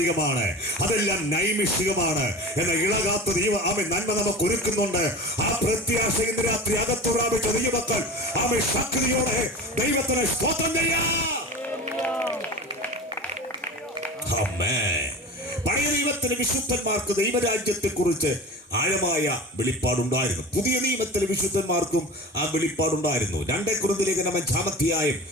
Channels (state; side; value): normal; both; correlation 0.33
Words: അതെല്ലാം നൈമിഷികമാണ്. എന്ന ഇളകാത്ത നന്മ നമുക്ക് ഒരുക്കുന്നുണ്ട്. ആ പ്രത്യാശ ഇന്ന് രാത്രി അകത്തു പ്രാപിച്ച ദൈവമക്കൾ ശക്തിയോടെ ദൈവത്തിന് സ്തോത്രം ചെയ്യാം. പഴയ നിയമത്തിലെ വിശുദ്ധന്മാർക്ക് ദൈവരാജ്യത്തെ കുറിച്ച് ആഴമായ വെളിപ്പാടുണ്ടായിരുന്നു. പുതിയ നിയമത്തിലെ വിശുദ്ധന്മാർക്കും ആ വെളിപ്പാടുണ്ടായിരുന്നു. 2 കൊരിന്ത്യർ 5-ാം അധ്യായം